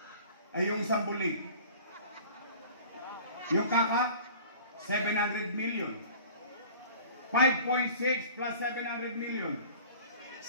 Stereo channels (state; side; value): inverted; both; correlation -0.45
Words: Ay yung isang bulig. Yung kaka, 700 million. 5.6 plus 700 million.